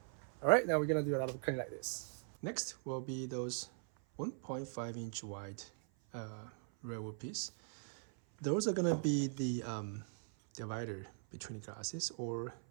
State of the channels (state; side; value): silent; left; 51 dB below the other